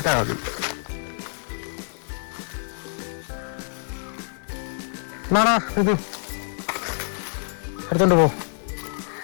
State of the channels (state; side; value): silent; right; 61 dB below the other